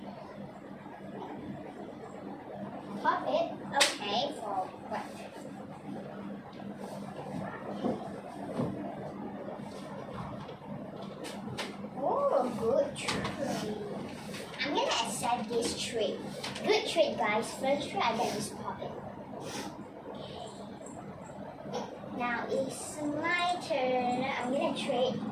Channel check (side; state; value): both; identical; correlation 1.00